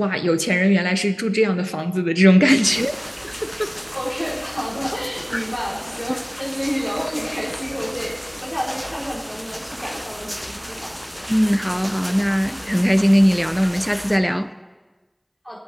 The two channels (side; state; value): both; identical; correlation 1.00